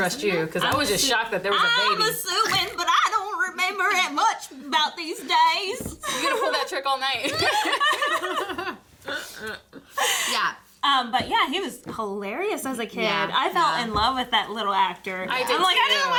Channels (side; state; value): both; identical; correlation 1.00